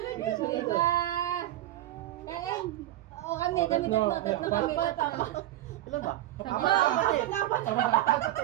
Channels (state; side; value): quieter; left; 14.7 dB